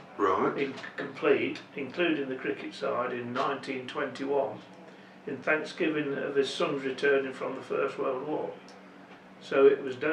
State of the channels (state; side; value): identical; both; correlation 1.00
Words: complete, including the cricket side, in 1921, in Thanksgiving of his son's returning from the First World War. So it was